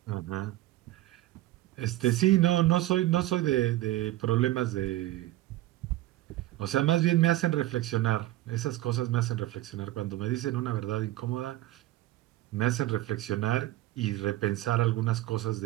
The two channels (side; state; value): left; quieter; 16.0 dB